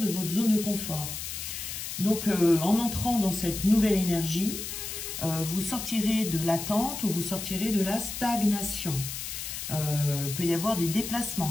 de votre zone de confort. Donc en entrant dans cette nouvelle énergie, vous sortirez de l'attente ou vous sortirez de la stagnation. Peut y avoir des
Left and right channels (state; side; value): noise; left; hiss, 6 dB below the sound